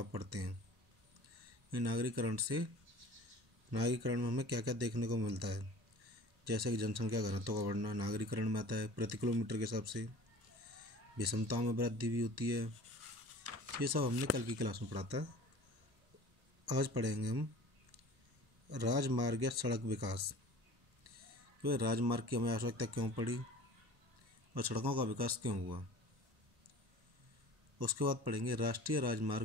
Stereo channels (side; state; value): left; late; 1.1 ms